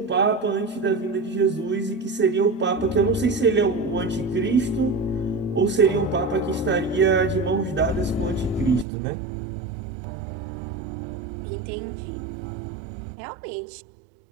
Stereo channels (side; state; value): left; drops out; at 8.8 s